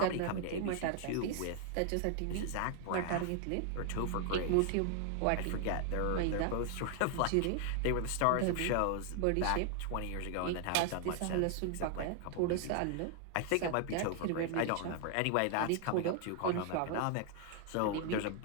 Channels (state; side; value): different; both; correlation 0.00